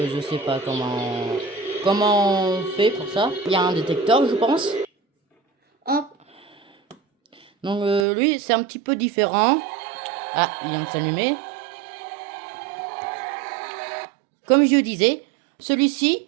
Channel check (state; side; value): drops out; left; at 8.1 s